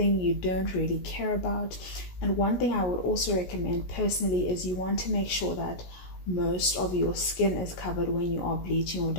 you don't really care about. And one thing I would also recommend personally is you want to make sure that most of your skin is covered when you are bleaching or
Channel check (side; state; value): right; late; 17 ms